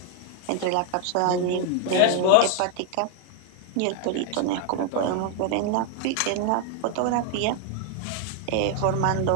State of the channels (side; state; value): both; different; correlation 0.00